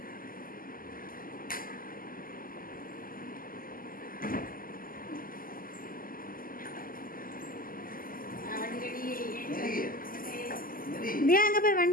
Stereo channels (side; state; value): right; late; 0.41 ms